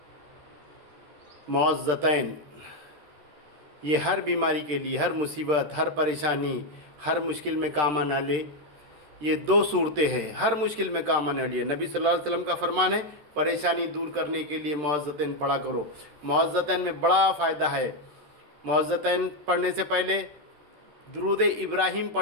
मुअज़्ज़तैन, ये हर बीमारी के लिए, हर मुसीबत, हर परेशानी, हर मुश्किल में काम आने वाले ये दो सूरतें हैं, हर मुश्किल में काम आने वाली है। नबी सल्लल्लाहु अलैहि वसल्लम का फरमान है, परेशानी दूर करने के लिए मुअज़्ज़तैन पढ़ा करो। मुअज़्ज़तैन में बड़ा फ़ायदा है। मुअज़्ज़तैन पढ़ने से पहले दुरूद इब्राहीम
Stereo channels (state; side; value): late; left; 13 ms